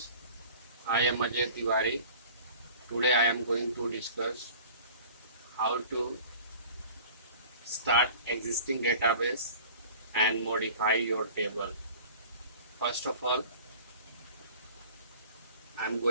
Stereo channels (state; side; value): inverted; both; correlation -0.44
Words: I am Ajay Tiwari. Today I am going to discuss how to start existing database and modify your table. First of all, I am